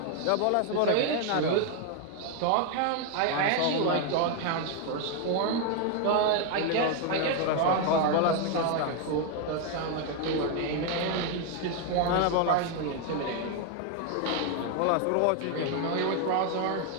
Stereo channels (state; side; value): different; both; correlation 0.01